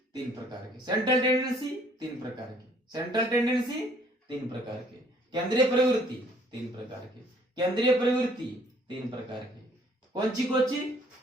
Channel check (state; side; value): normal; both; correlation 0.61